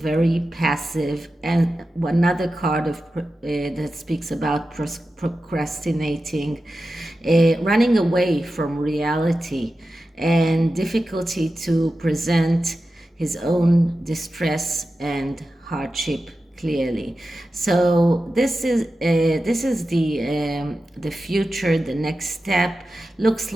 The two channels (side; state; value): both; normal; correlation 0.92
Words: passive. And another card that speaks about procrastinating, running away from reality, and difficulty to present his own distress and hardship clearly. So this is the future. The next step looks